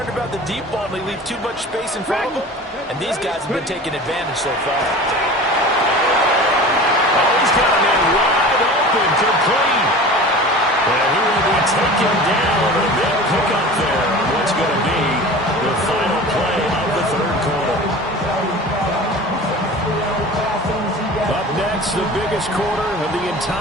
about the deep ball and they leave too much space in front of them. And these guys have been taking advantage so far. Oh, he's got a man wide open, complete. And he will be taken down. A big pickup there on what's going to be the final play of the third quarter. Up next, the biggest quarter of the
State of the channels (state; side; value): normal; both; correlation 0.37